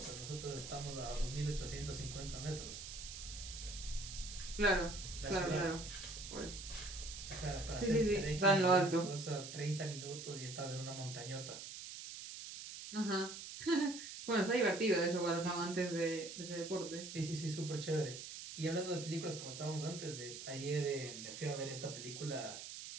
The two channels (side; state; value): right; noise; hiss, 9 dB below the sound